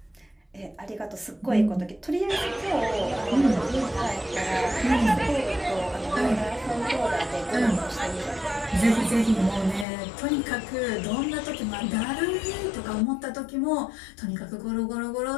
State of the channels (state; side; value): drops out; right; at 9.9 s